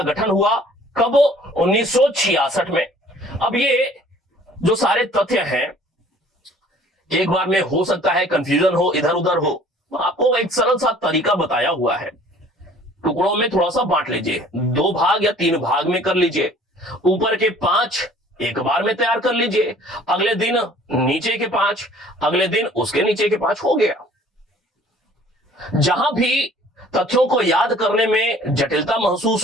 गठन हुआ कब? 1966 में। अब ये जो सारे तथ्य हैं, एक बार में हो सकता है कंफ्यूजन हो, इधर उधर हो। आपको एक सरल सा तरीका बताया हुआ है। टुकड़ों में थोड़ा सा बांट लीजिए, 2 भाग या 3 भाग में कर लीजिए। ऊपर के 5 एक बार में तैयार कर लीजिए, अगले दिन नीचे के 5, अगले दिन उसके नीचे के 5, हो गया। जहां भी तथ्यों को याद करने में जटिलता महसूस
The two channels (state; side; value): normal; both; correlation 0.53